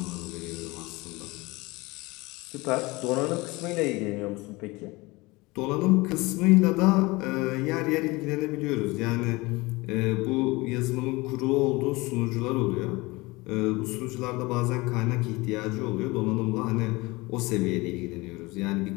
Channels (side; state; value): right; quieter; 23.0 dB